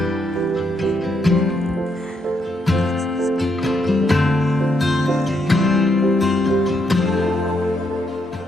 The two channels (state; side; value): normal; both; correlation 0.77